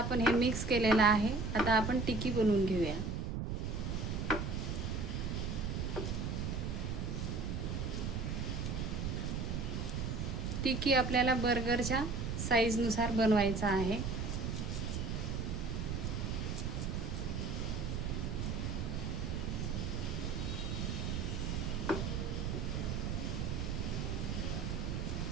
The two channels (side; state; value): right; noise; rumble, 1 dB below the sound